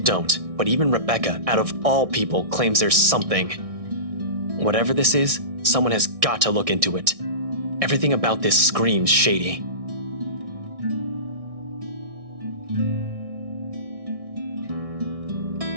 but even Rebecca, out of all people, claims there's something. Whatever this is, someone has got to look into it. Everything about this screams shady.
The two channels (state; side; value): late; left; 1.6 ms